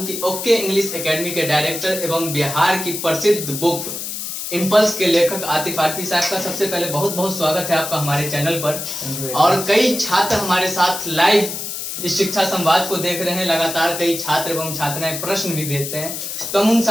कि ओके इंग्लिश एकेडमी के डायरेक्टर एवं बिहार की प्रसिद्ध बुक इम्पल्स के लेखक आतिफ आरफी साहब का सबसे पहले बहुत बहुत स्वागत है आपका हमारे चैनल पर। और कई छात्र हमारे साथ लाइव इस शिक्षा संवाद को देख रहे हैं। लगातार कई छात्र एवं छात्राएं प्रश्न भी भेजते हैं, तो हम उन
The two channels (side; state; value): left; noise; hiss, 6 dB below the sound